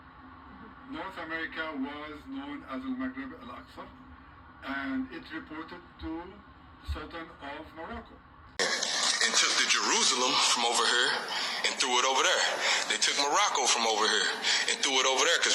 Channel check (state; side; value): identical; both; correlation 1.00